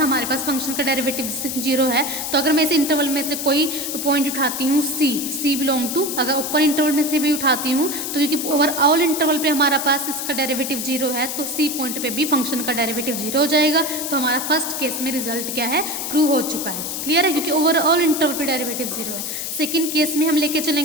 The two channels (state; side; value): noise; left; hiss, 4 dB below the sound